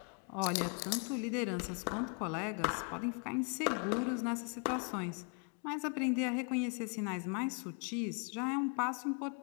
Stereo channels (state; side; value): quieter; right; 37.7 dB